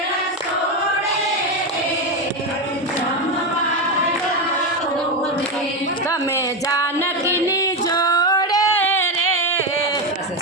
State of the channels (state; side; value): normal; both; correlation 0.12